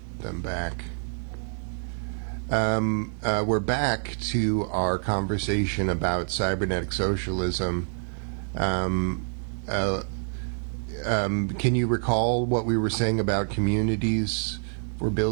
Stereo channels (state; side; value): silent; left; digital silence